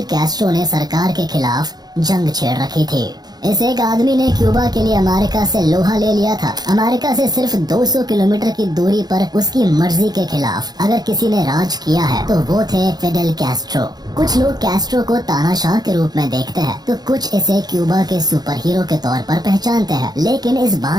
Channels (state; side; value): late; left; 0.19 ms